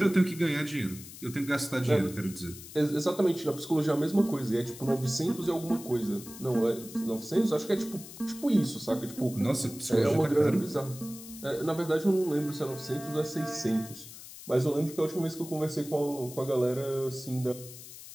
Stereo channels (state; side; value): noise; left; hiss, 15 dB below the sound